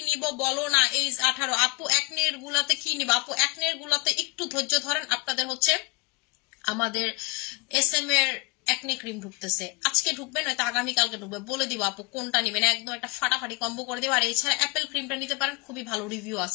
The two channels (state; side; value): quieter; right; 27.2 dB